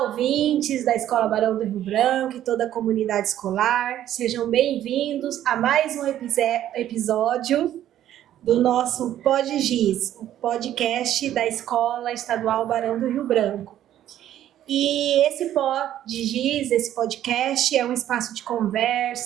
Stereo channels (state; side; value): quieter; left; 11.9 dB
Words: ouvintes da Escola Barão do Rio Branco e toda a comunidade escolar. Sejam bem-vindos a mais um episódio do nosso PodGiz, o podcast da Escola Estadual Barão do Rio Branco. E esse PodGiz, esse podcast, é um espaço de